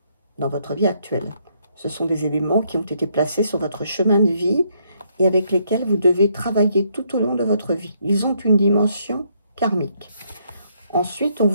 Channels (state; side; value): inverted; both; correlation -0.72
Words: dans votre vie actuelle. Ce sont des éléments qui ont été placés sur votre chemin de vie et avec lesquels vous devez travailler tout au long de votre vie. Ils ont une dimension karmique. Ensuite, on